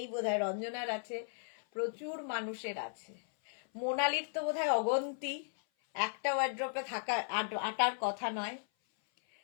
বোধহয়, রঞ্জনার আছে, প্রচুর মানুষের আছে। মোনালির তো বোধহয় অগন্তি, একটা ওয়ার্ড্রপে থাকা আটার কথা নয়।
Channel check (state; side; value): silent; right; 54 dB below the other